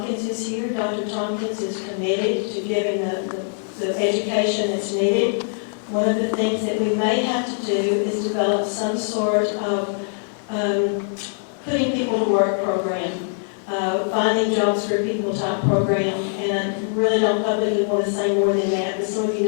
is here. Dr. Tompkins is committed to giving the education that's needed. One of the things that we may have to do is develop some sort of putting people to work program, finding jobs for people type program, and I really don't publicly want to say more than that, but some of you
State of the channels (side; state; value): right; silent; digital silence